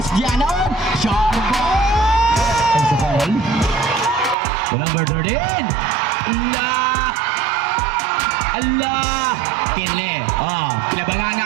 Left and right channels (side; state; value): left; drops out; at 4.4 s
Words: Ganon. Short ball. And sa foul. To number 13. Allah. Kili. Kinabangan